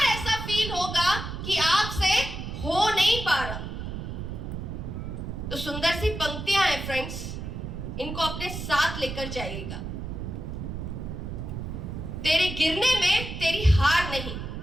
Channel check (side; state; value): right; noise; rumble, 6 dB below the sound